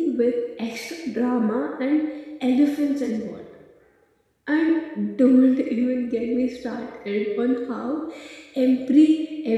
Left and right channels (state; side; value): identical; both; correlation 1.00